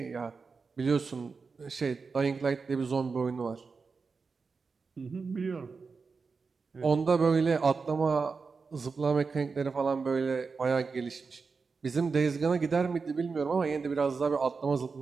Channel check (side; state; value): left; quieter; 4.8 dB